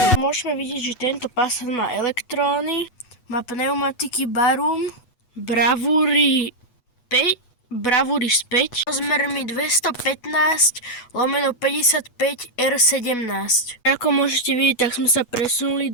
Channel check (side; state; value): right; late; 8.2 ms